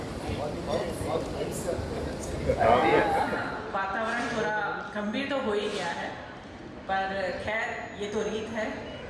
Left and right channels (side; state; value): both; identical; correlation 1.00